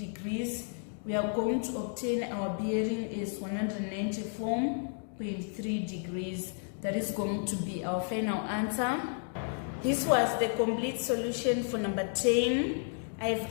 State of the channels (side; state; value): right; silent; 55 dB below the other